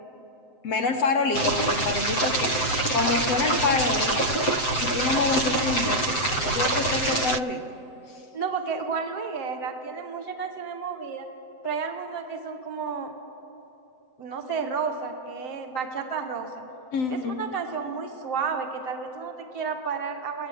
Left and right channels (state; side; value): late; right; 7.8 ms